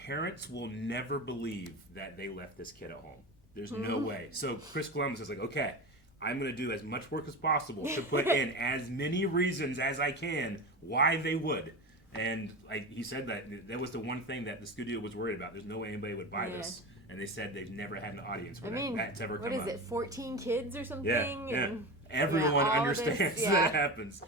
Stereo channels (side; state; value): both; normal; correlation 0.26